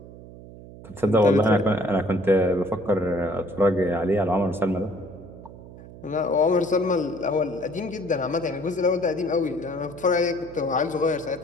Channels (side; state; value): right; noise; hum, 17 dB below the sound